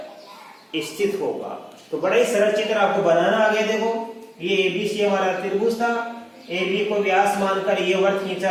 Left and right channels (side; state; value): both; identical; correlation 1.00